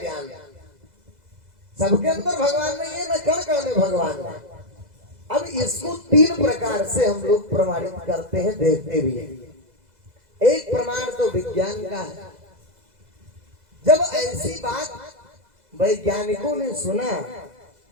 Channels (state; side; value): late; left; 2.0 ms